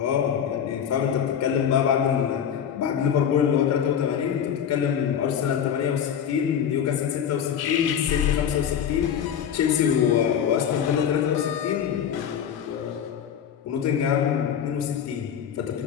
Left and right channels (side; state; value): right; quieter; 8.6 dB